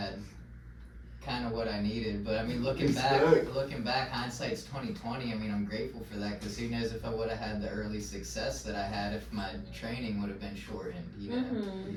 kind of what I needed. But I mean, looking back, hindsight's 2020. I mean, I'm grateful for that, because who knows if I would have had the early success that I had if my training would have been shortened, you know.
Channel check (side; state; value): both; identical; correlation 1.00